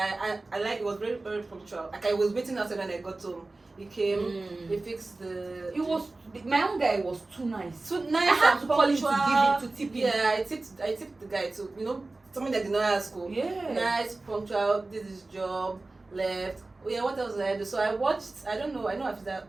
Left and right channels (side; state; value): left; quieter; 3.2 dB